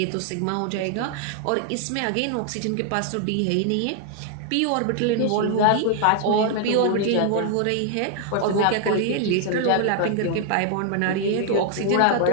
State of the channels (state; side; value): different; both; correlation 0.00